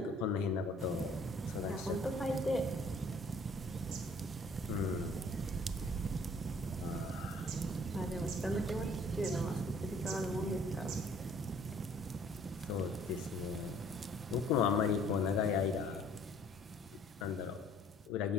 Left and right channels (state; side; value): normal; both; correlation 0.57